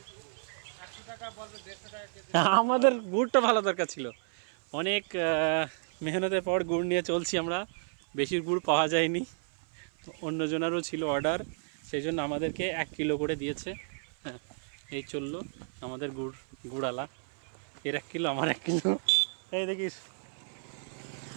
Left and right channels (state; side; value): silent; left; 57 dB below the other